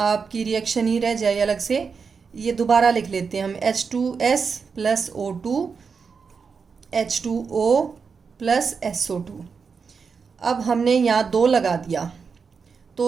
रिएक्शन ही रह जाए अलग से। ये दोबारा लिख लेते हैं हम, H2S + O2 H2O + SO2। अब हमने यहाँ 2 लगा दिया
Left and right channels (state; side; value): quieter; left; 5.5 dB